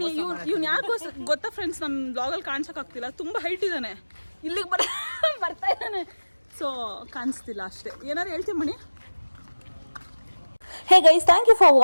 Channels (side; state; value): both; inverted; correlation -1.00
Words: ಯಾಕೋ ಗೊತ್ತಾ ಫ್ರೆಂಡ್ಸ್, ನಮ್ಮ ಬ್ಲಾಗಲ್ಲಿ ಕಾಣಿಸಕ್ ಆಗ್ತಿಲ್ಲ, ತುಂಬಾ ಹೈಟ್ ಇದ್ದಾನೆ, ಇಲ್ಲಿಗೆ ಬರ್ತಾ ಇದ್ದಾನೆ, ಸೊ ಕಾಣಿಸ್ತಿಲ್ಲ ಅಷ್ಟೇ. ಏನಾರು ಹೇಳ್ತೀವಿ ಮಣಿ? Hey guys, thank you for